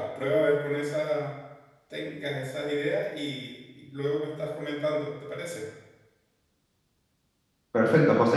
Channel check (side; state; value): both; identical; correlation 1.00